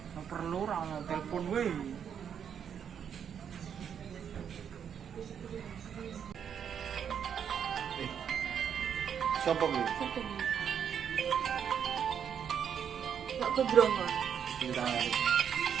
perlu ra ono telepon wae. Sopo kuwi? Gak kebrongo. Cinta.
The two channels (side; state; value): left; quieter; 8.1 dB